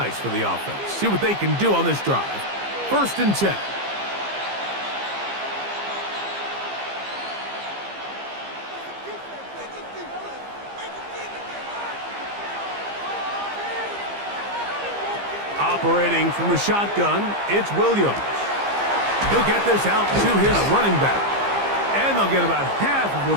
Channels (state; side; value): late; left; 15 ms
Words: for the offense. See what they can do on this drive. First and 10. Operating from the shotgun, it's Williams. He'll get this out to his running back. And they'll get about half of